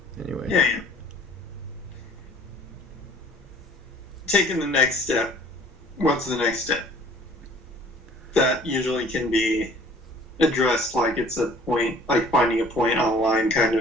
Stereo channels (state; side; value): normal; both; correlation 0.52